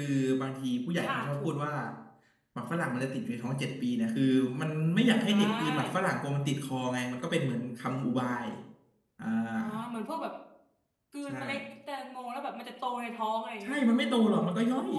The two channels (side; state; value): both; identical; correlation 1.00